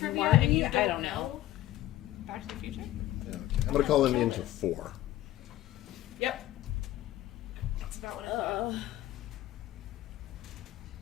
Marty, and you I don't know. Back to the Future? Yeah, okay. I'm gonna call him into 4. Yep. That's about what I thought.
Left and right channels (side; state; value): right; quieter; 14.4 dB